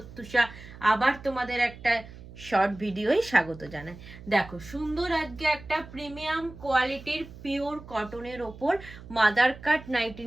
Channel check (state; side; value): noise; right; hum, 17 dB below the sound